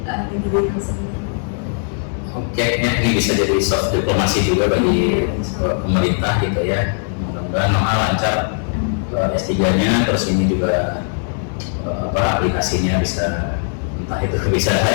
pendidikan sendiri. Oke, ini bisa jadi soft diplomasi juga bagi pemerintah gitu ya. Mudah-mudahan Noha lancar S3-nya, terus ini juga aplikasinya bisa entah itu bisa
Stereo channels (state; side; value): silent; right; digital silence